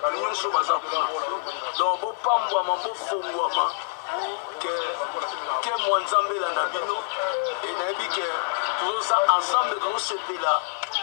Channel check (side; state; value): right; silent; digital silence